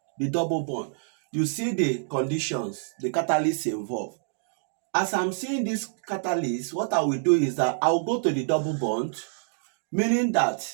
The double bond. You see the conditions, the catalyst involved. As I'm seeing this catalyst, what I will do is that I will go to the double bond, meaning that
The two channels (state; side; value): silent; left; digital silence